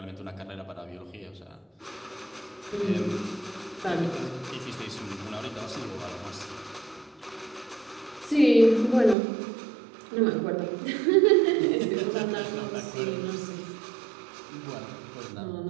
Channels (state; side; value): drops out; left; at 9.2 s